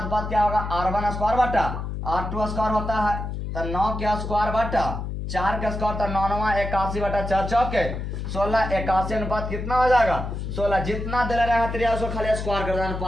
क्या होगा r1 स्क्वायर बटा r2 स्क्वायर होता है, तो 9 के स्क्वायर बटा 4 का स्क्वायर तो 9 81 बटा 4 चौके 16 81 अनुपात कितना हो जाएगा 16। जितना दे रहेगा त्रिया उसको खाली स्क्वायर कर देना,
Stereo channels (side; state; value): left; noise; hum, 5 dB below the sound